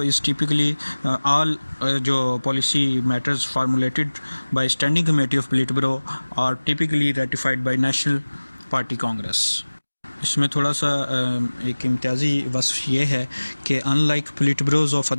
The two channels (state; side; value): inverted; both; correlation -1.00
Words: is typically all जो policy matters formulated by standing committee of politburo are typically ratified by national party congress. इसमें थोड़ा सा एक इम्तियाजी वस्फ ये है कि unlike politburos of